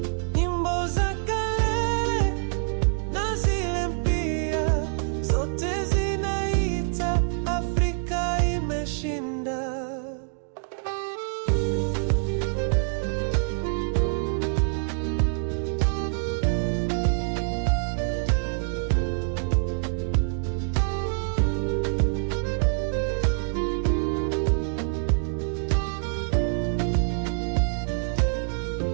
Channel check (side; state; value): left; silent; 61 dB below the other